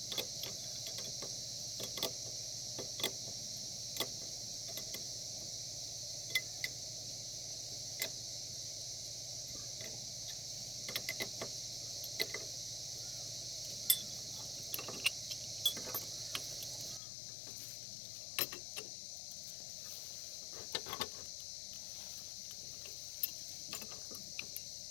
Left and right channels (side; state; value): right; drops out; at 17.0 s